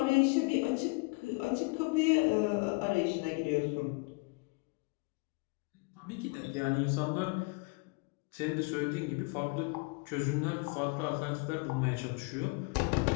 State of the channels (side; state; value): right; quieter; 29.6 dB